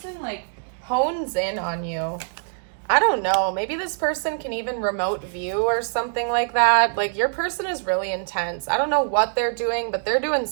like, hones in on you. I don't know. Maybe this person can even remote view or something like that. Like, your person is really intense. I don't know what they're doing, but they're doing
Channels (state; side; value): silent; left; digital silence